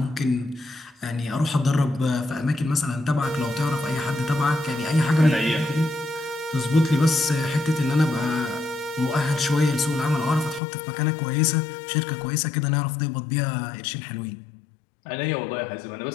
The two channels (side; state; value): right; drops out; at 10.6 s